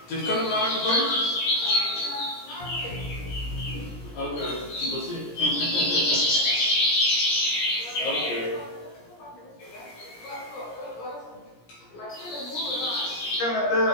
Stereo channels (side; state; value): right; late; 17 ms